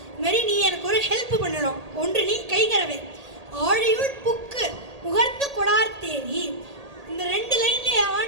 இது மாதிரி நீ எனக்கு ஒரு ஹெல்ப் பண்ணணும், ஒன்று நீ கைகரவேல். ஆழியுள் புக்கு முகர்ந்து கொடார்த்தேரி, இந்த ரெண்டு லைன்ல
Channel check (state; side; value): late; left; 1.8 ms